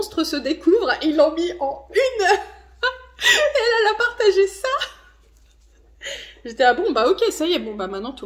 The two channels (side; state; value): both; identical; correlation 1.00